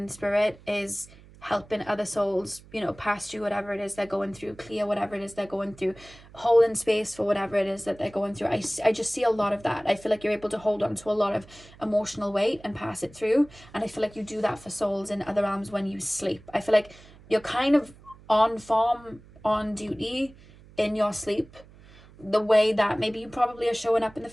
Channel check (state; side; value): noise; right; hum, 23 dB below the sound